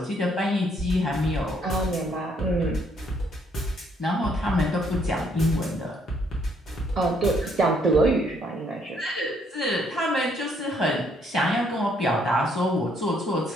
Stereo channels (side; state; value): both; normal; correlation 0.68